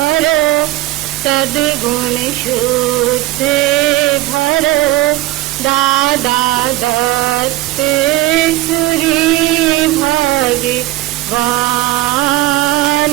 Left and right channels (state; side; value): quieter; left; 16.1 dB